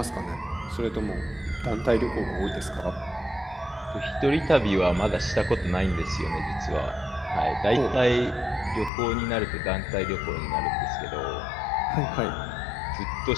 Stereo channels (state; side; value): drops out; right; at 8.9 s